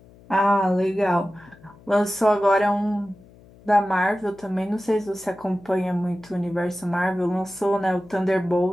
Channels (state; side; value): noise; left; hum, 25 dB below the sound